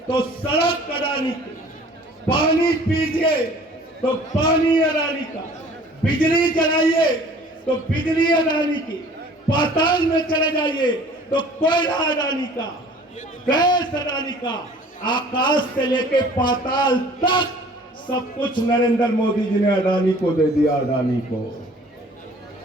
तो सड़क अडानी की, पानी पीजिए तो पानी अडानी का, बिजली जलाइए तो बिजली अडानी की, पाताल में चले जाइए तो कोयला अडानी का, गैस अडानी का, आकाश से लेके पाताल तक सब कुछ नरेंद्र मोदी जी ने अडानी को दे दिया। अडानी को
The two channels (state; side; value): normal; both; correlation 0.50